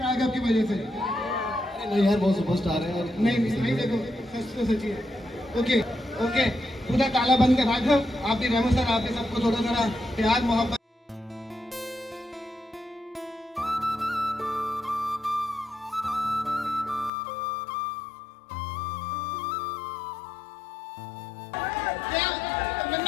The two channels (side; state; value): right; drops out; at 17.1 s